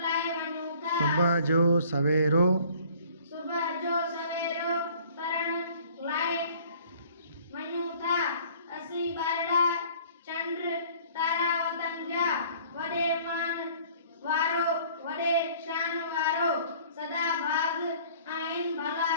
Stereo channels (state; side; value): inverted; both; correlation -0.53